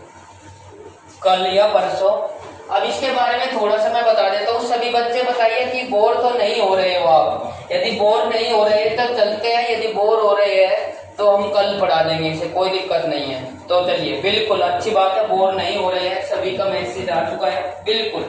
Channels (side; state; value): both; identical; correlation 1.00